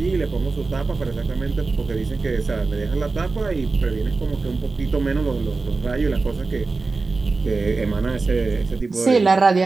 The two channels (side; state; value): left; quieter; 3.9 dB